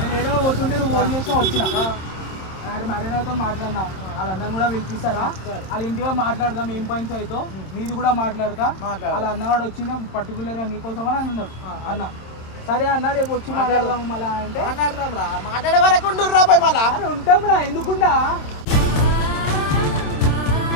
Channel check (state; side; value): late; right; 26 ms